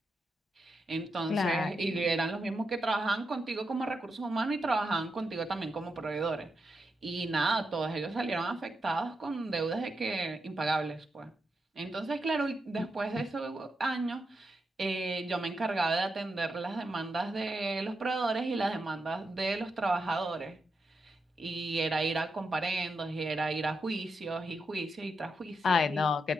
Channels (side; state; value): both; normal; correlation 0.85